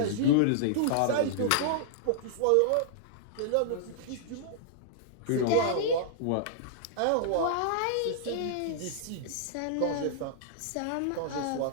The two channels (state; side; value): different; both; correlation -0.01